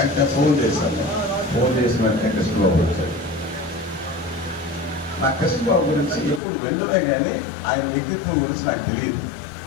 ఫోన్ చేశాను. ఫోన్ చేసిన వెంటనే కృష్ణబాబు వచ్చాడు. నా కృష్ణబాబు గురించి ఎప్పుడు వెళ్ళినా కానీ ఆయన వ్యక్తిత్వం గురించి నాకు తెలియదు.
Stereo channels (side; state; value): right; drops out; at 6.4 s